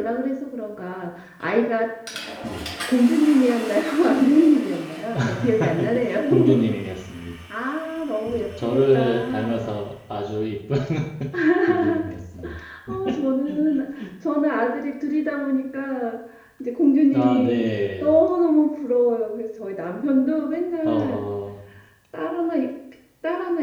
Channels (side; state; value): both; identical; correlation 1.00